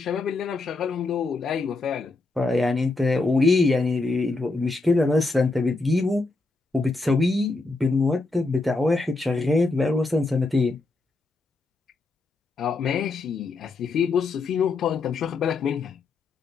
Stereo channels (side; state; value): right; quieter; 3.4 dB